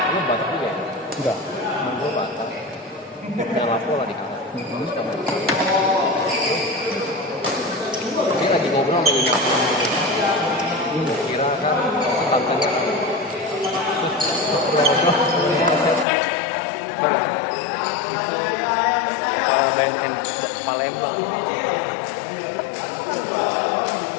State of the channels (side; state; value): right; drops out; at 16.1 s